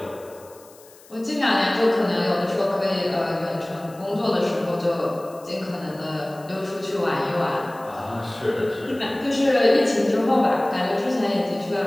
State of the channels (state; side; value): noise; left; hiss, 24 dB below the sound